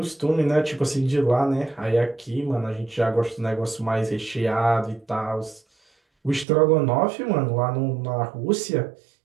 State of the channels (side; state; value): left; drops out; at 6.5 s